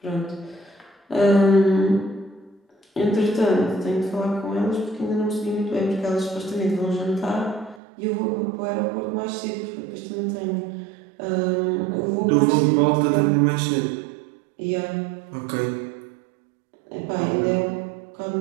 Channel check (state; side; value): drops out; left; at 7.8 s